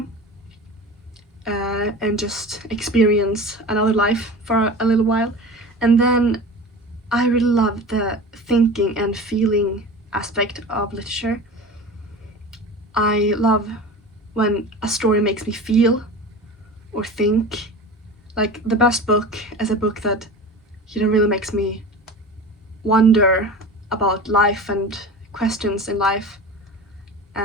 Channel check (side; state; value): both; normal; correlation 0.34